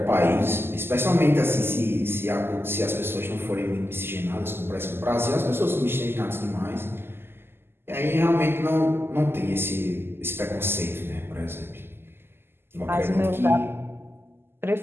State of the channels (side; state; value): left; late; 0.11 ms